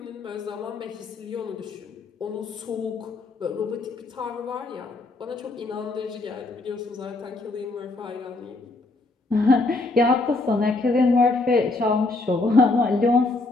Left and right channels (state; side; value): quieter; right; 3.3 dB